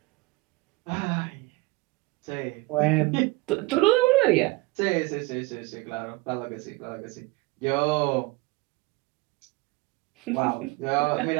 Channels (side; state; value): left; quieter; 23.1 dB